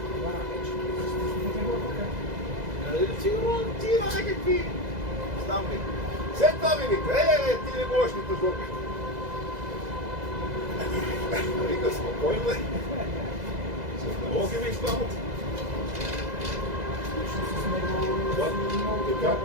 Сигурно ти има някакви... Знам ли. След това ми вика, ти не можеш ни тъжбока. Вика, спокойно бе. С налоги ми изпамат. Така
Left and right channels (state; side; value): late; left; 2.0 ms